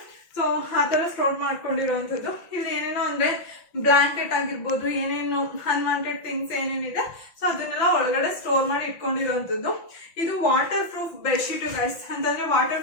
ಸೊ ಆ ಥರ ಸ್ಟೋರ್ ಮಾಡ್ಕೊಂಡಿರೋವಂಥದ್ದು. ಇಲ್ಲಿ ಏನೇನೋ ಅಂದರೆ ಬ್ಲ್ಯಾಂಕೆಟ್ ಆಗಿರ್ಬೋದು, ಏನೇನು ಅನ್ವಾಂಟೆಡ್ ಥಿಂಗ್ಸ್ ಏನೇನಿದೆ ಸೊ ಅದನ್ನೆಲ್ಲ ಒಳಗಡೆ ಸ್ಟೋರ್ ಮಾಡಿ ಇಟ್ಕೊಂಡಿರೋವಂಥದ್ದು. ಇದು ವಾಟರ್ ಪ್ರೂಫ್ ಬೆಡ್ಶೀಟು ಗೈಸ್. ಅಂತಂದರೆ ವಾಟರ್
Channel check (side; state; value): right; late; 5.8 ms